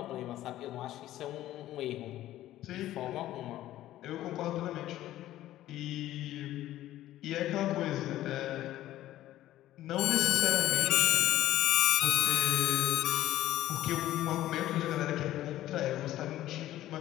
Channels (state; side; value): quieter; right; 14.1 dB